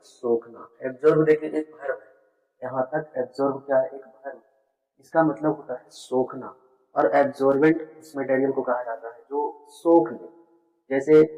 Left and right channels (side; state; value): both; identical; correlation 1.00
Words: सोखना। एब्जॉर्ब देखिए एक वर्ब है, यहाँ तक एब्जॉर्ब क्या है, एक वर्ब। इसका मतलब होता है सोखना। और एब्जॉर्बेंट उस मटेरियल को कहा जाता है जो सोख ले। जैसे